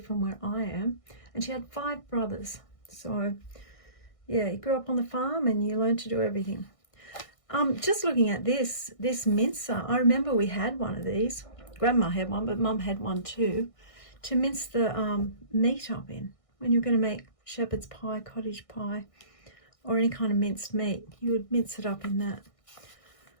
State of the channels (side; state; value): right; late; 1.6 ms